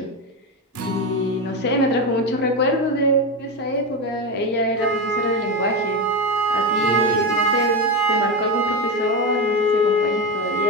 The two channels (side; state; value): both; normal; correlation 0.15